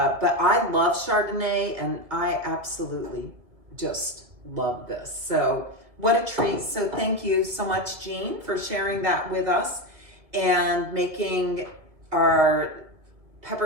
I love Chardonnay and I absolutely just love this. So what a treat. So thank you so much, Jean, for sharing that with us and making our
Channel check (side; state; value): left; late; 2.1 ms